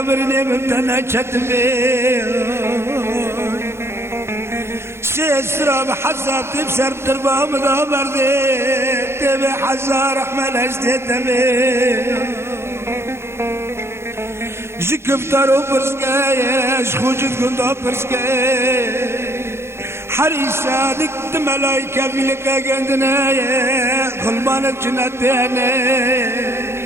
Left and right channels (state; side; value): late; left; 0.12 ms